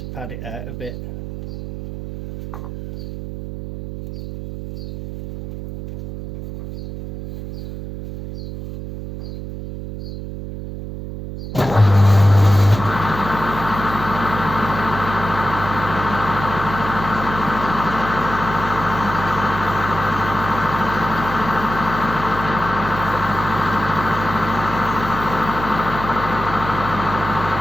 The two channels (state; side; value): noise; right; hum, 9 dB below the sound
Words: pad it out a bit.